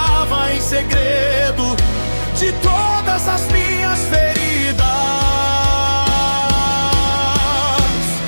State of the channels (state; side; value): inverted; both; correlation -1.00